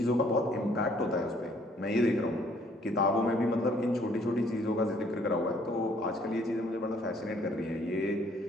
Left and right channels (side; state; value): both; normal; correlation 0.62